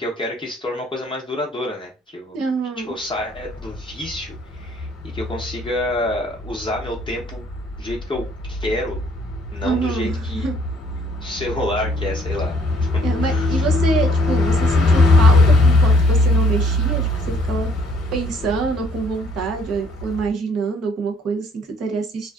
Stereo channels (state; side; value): normal; both; correlation 0.63